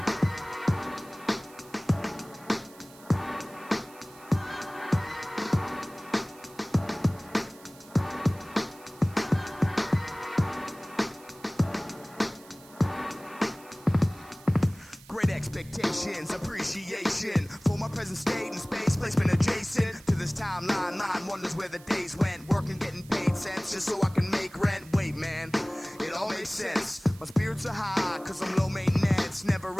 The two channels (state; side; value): noise; right; hiss, 22 dB below the sound